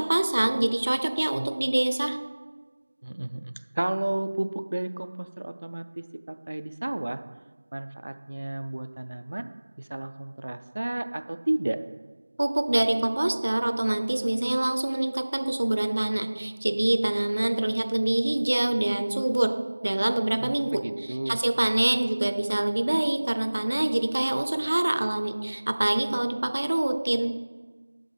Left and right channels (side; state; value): both; inverted; correlation -1.00